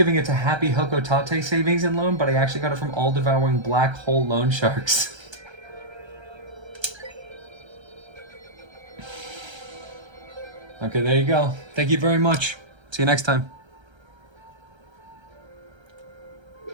it to Happy Hokotate Savings and Loan, but I actually got it from all-devouring black hole loan sharks. Okay, there you go. Thank you very much. See you next time.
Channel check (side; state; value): left; late; 1.3 ms